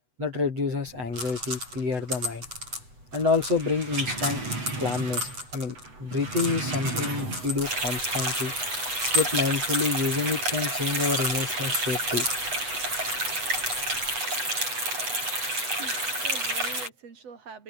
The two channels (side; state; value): left; late; 8.0 ms